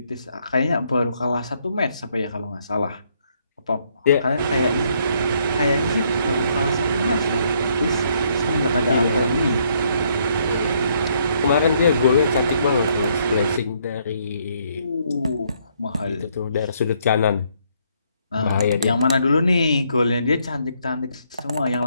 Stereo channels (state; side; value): inverted; both; correlation -0.70